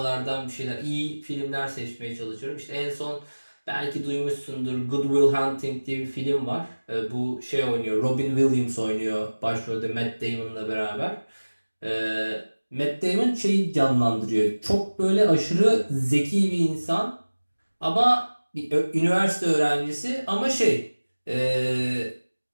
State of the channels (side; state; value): both; inverted; correlation -1.00